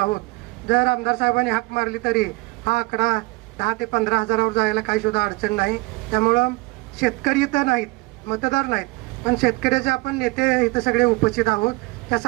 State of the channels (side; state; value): left; quieter; 24.8 dB